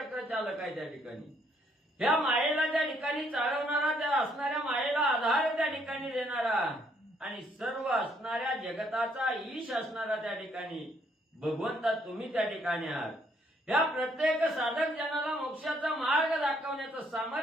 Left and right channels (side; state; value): both; normal; correlation 0.69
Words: चालक आहे त्या ठिकाणी, ह्या मायेला त्या ठिकाणी चालवणारा, त्या असणाऱ्या मायेला आधार त्या ठिकाणी देणारा, आणि सर्व असणाऱ्या जगताचा ईश असणारा त्या ठिकाणी भगवंता तुम्ही त्या ठिकाणी आहात. या प्रत्येक साधक जनाला मोक्षाचा मार्ग दाखवण्याचं